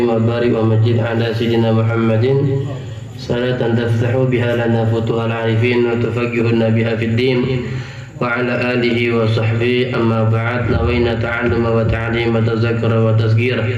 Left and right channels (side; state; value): both; identical; correlation 1.00